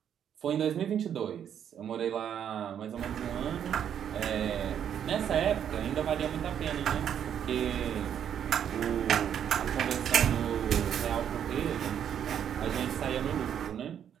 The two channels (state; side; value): quieter; left; 9.1 dB